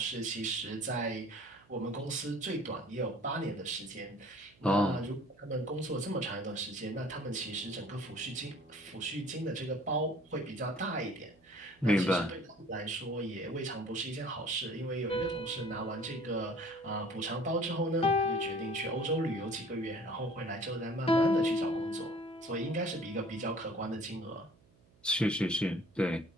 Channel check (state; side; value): noise; right; hum, 30 dB below the sound